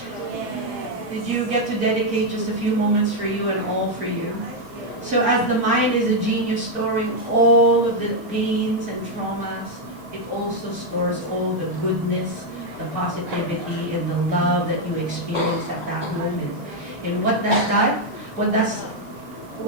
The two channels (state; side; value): late; left; 6.5 ms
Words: Yes. Did you get to dedicate just a few moments for you and all for you? So as the mind is a genius storing all of the pains and traumas, it also stores all the goodness, the positivity, and the love that you experience at that moment. And what does that?